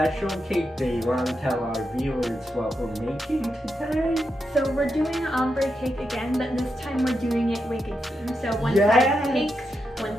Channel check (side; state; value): both; normal; correlation 0.85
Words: cake. Do you want to tell our viewers what we're making today? So we're doing an ombre cake again, but this time we're doing it wicked theme. So one side pink,